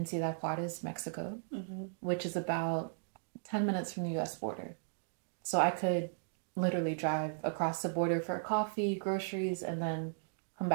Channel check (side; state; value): left; silent; digital silence